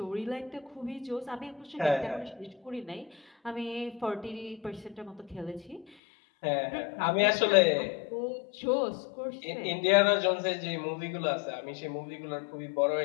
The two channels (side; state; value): right; drops out; at 5.9 s